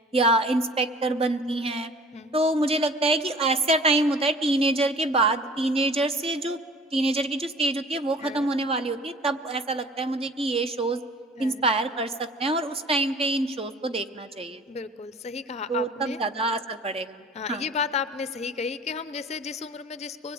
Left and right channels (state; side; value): normal; both; correlation 0.47